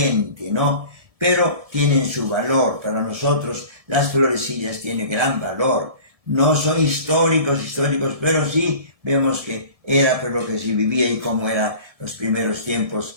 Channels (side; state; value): left; late; 1.7 ms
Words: ¿no? Pero tienen su valor. Para nosotros las florecillas tienen gran valor. No son históricos, pero sí vemos que era por lo que se vivía y cómo eran los primeros